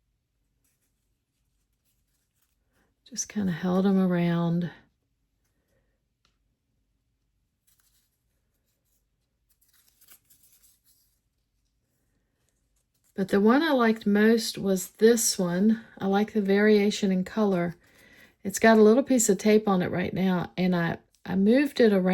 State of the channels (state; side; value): identical; both; correlation 1.00